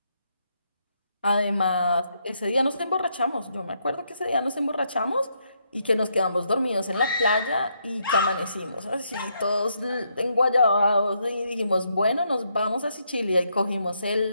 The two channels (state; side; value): inverted; both; correlation -0.77